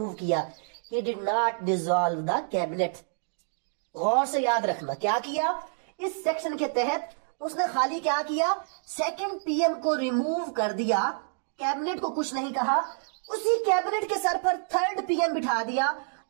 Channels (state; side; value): silent; left; digital silence